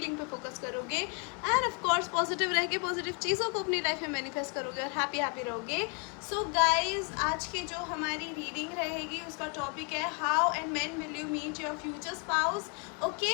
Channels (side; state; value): right; quieter; 36.3 dB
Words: पे फोकस करोगे। एंड ऑफ कोर्स पॉजिटिव रह के पॉजिटिव चीज़ों को अपनी लाइफ में मैनिफेस्ट करोगे और हैप्पी रहोगे। सो गाइज, आज की जो हमारी रीडिंग रहेगी उसका टॉपिक है how and when will you meet your future spouse.